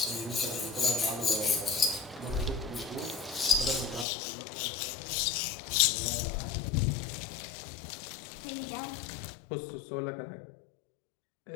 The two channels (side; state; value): right; drops out; at 4.0 s